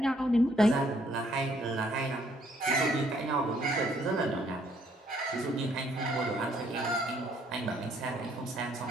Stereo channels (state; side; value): normal; both; correlation 0.67